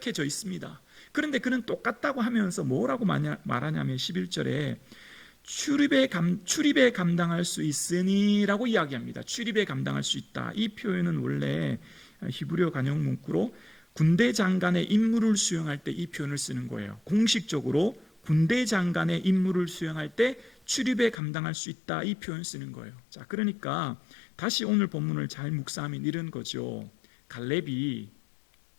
있습니다. 그런데 그는 똑같다고 하면서 뭐라고 말하냐면 11절에 출입에 감당할 수 있으니 라고 이야기합니다. 출입에 감당할 수 있다. 이 표현은 원래 히브리어 간역 문구로 군대 장관의 임무를 수행할 때 이 표현을 쓰는 거예요. 공식적으로 군대 장관의 임무를 수행할 때 출입에 감당할 수 있다. 이 표현 쓰는 거예요. 자, 그러니까 다시 오늘 본문을 잘 묵상하면 이런 거죠. 갈렙이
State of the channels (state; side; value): drops out; right; at 21.2 s